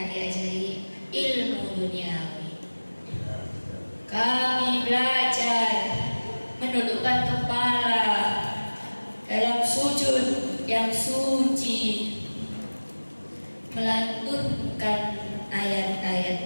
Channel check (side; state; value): both; inverted; correlation -1.00